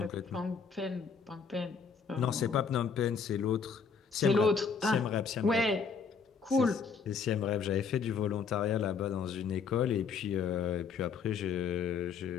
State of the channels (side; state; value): right; quieter; 5.8 dB